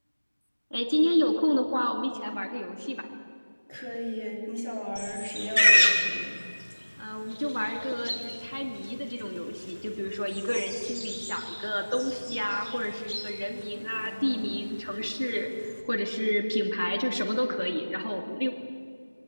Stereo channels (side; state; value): both; inverted; correlation -1.00